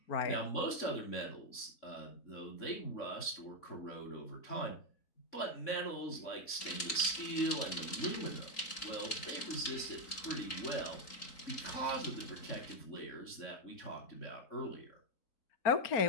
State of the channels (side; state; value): right; late; 3.8 ms